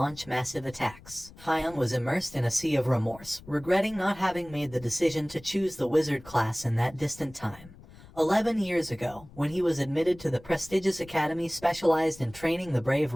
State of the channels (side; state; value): left; noise; rumble, 21 dB below the sound